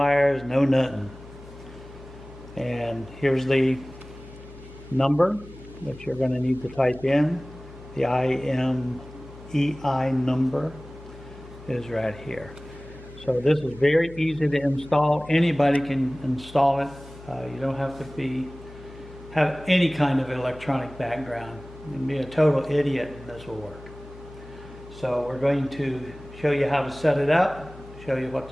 no nothing. And here's the number that you're going to need to type in. The IMEI number is right here. So this is very easy to install. Anybody can install it. You don't have to have any kind of electronic background. You can be a total idiot and this will work. So we're going to show you how to set it up, show you what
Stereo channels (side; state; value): left; noise; hum, 18 dB below the sound